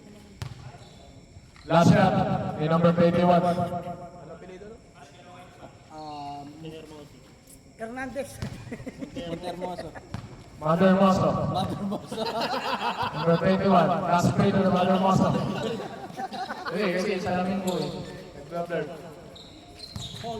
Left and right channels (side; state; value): both; identical; correlation 1.00